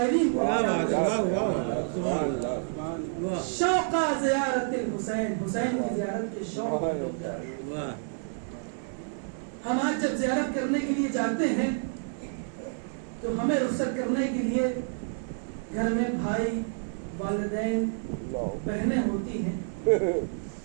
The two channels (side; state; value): left; silent; 57 dB below the other